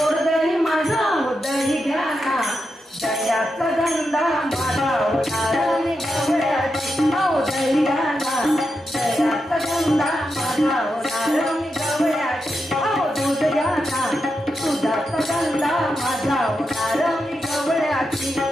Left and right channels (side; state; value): both; normal; correlation 0.86